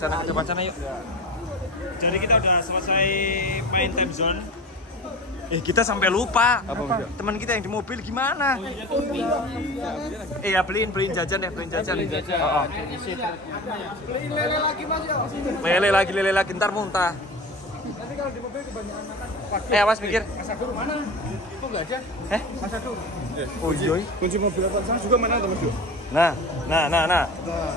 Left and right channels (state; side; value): normal; both; correlation 0.32